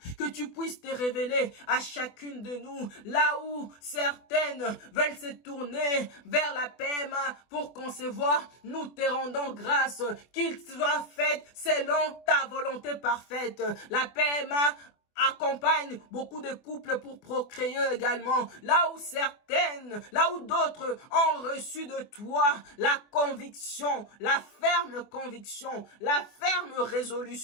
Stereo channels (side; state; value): right; late; 24 ms